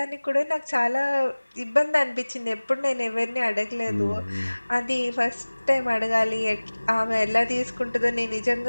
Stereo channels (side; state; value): both; inverted; correlation -1.00